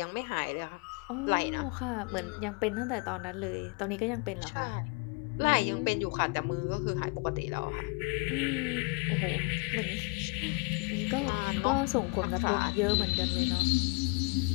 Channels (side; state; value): right; quieter; 30.8 dB